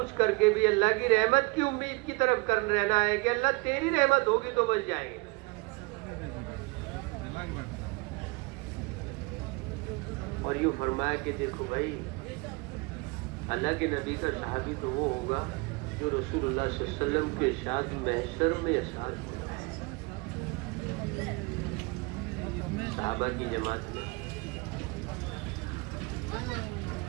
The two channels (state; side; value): quieter; left; 26.6 dB